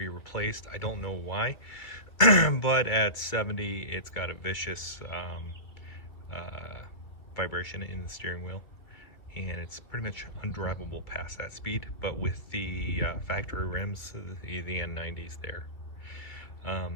replaced. I don't know why, but at 70 it's got a vicious vibration in the steering wheel, and it's pretty much undrivable past that speed. But with the factory rims, the N90s there,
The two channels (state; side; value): late; right; 2.2 ms